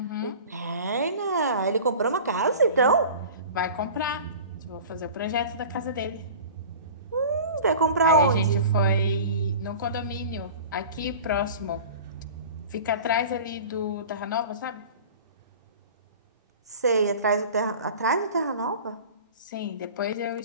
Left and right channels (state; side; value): inverted; both; correlation -0.38